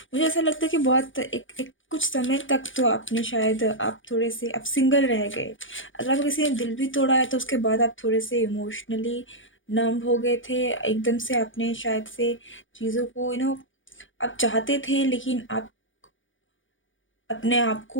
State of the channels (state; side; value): late; right; 0.57 ms